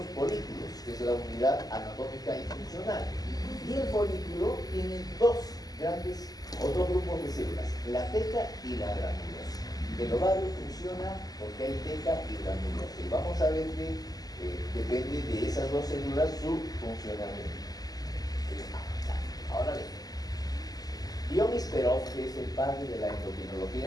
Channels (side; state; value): right; late; 0.18 ms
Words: folículos, que es la unidad anatómica y funcional. Y el folículo tiene dos grupos de células, la teca y la granulosa. El ovario funciona porque hay teca y granulosa. Y vamos a ver que depende de esas dos células su funcionamiento. Ahora bien, Dionis Perov, que es el padre de la